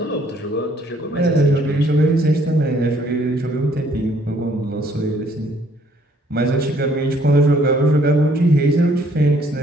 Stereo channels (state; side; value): normal; both; correlation 0.64